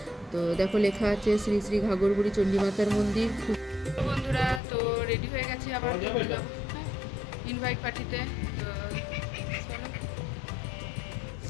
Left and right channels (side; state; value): right; drops out; at 4.6 s